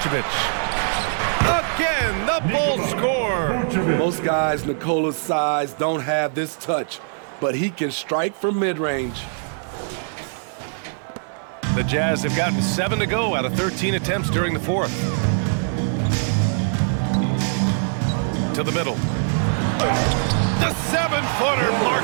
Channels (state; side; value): silent; left; 56 dB below the other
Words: Again, the Bulls score. Most guys Nikola's size don't have this touch, but he can strike from mid-range. The Jazz have gotten 7 to go out of 13 attempts during the fourth. To the middle. The 7-footer,